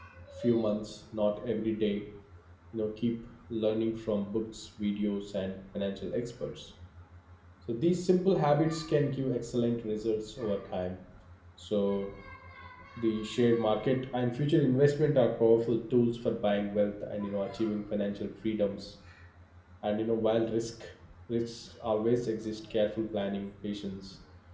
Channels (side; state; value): both; identical; correlation 1.00